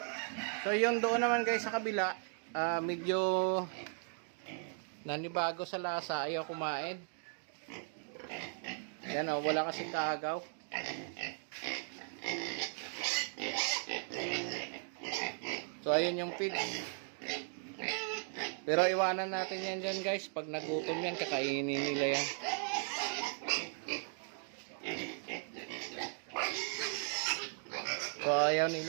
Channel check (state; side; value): silent; left; 53 dB below the other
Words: So yun doon naman guys sa kabila, medyo nanibago sa lasa, ayaw kumain. Yan wala kasing kaagaw. So ayun yung feed. Pero iwanan natin yan dyan guys. Pag nagutom yan, kakainin nila yan. So ayaw